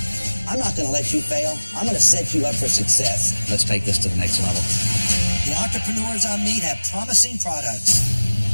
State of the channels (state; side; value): inverted; both; correlation -1.00